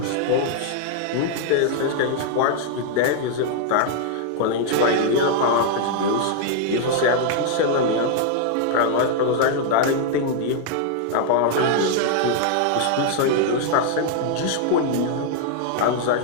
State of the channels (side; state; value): both; different; correlation -0.01